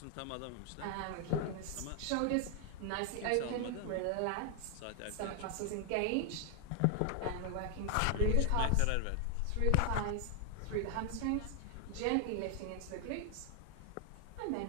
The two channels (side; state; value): both; different; correlation 0.00